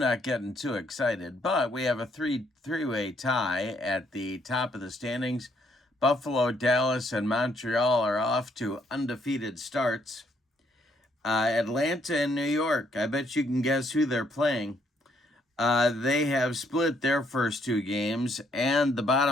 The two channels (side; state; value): both; normal; correlation 0.70